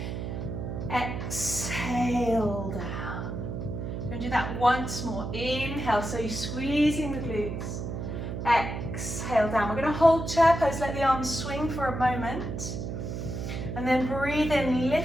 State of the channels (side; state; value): right; noise; hum, 5 dB below the sound